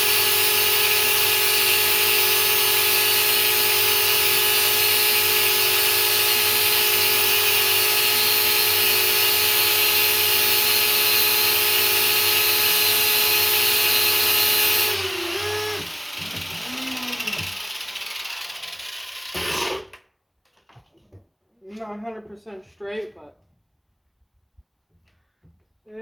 Not 100% straight, but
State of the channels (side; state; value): both; identical; correlation 1.00